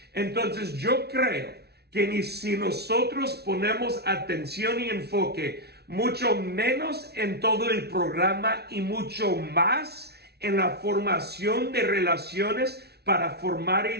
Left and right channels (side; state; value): left; late; 0.48 ms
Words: Entonces yo creo que si nosotros ponemos atención y enfoque mucho menos en todo el programa y mucho más en la formación de relaciones para formar